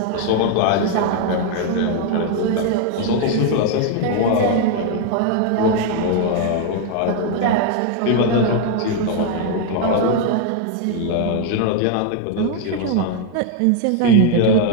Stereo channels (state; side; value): different; both; correlation 0.00